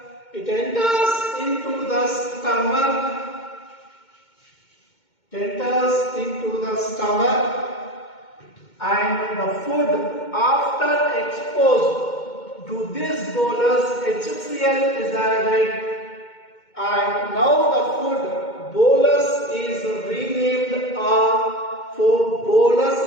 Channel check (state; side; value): late; right; 2.2 ms